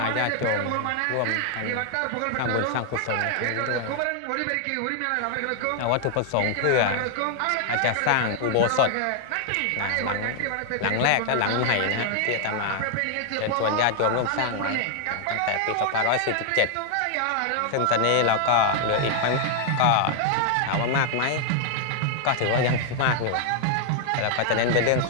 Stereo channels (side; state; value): both; different; correlation 0.00